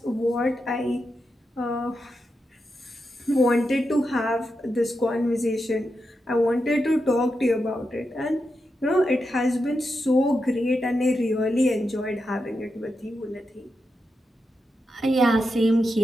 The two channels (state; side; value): normal; both; correlation 0.87